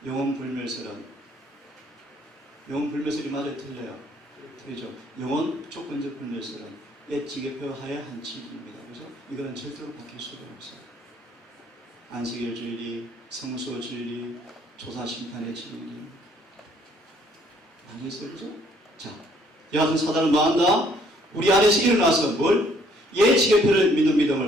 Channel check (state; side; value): normal; both; correlation 0.63